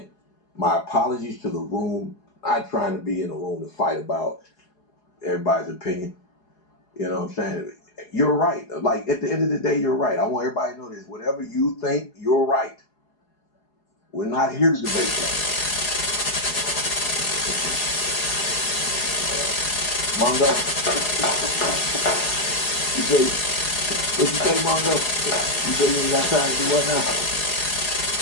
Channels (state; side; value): late; right; 4.8 ms